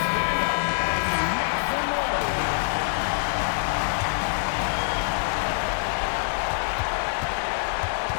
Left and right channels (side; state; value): right; silent; digital silence